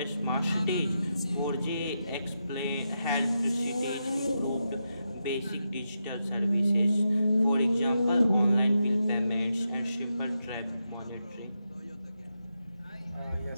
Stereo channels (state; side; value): inverted; both; correlation -0.86